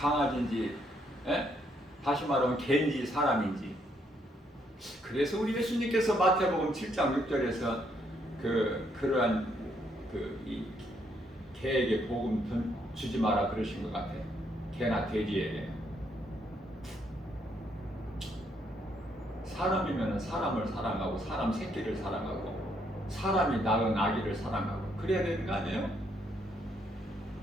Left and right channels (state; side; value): normal; both; correlation 0.73